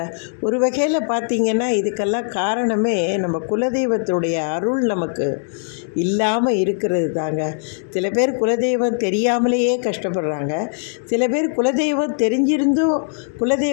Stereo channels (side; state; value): right; silent; digital silence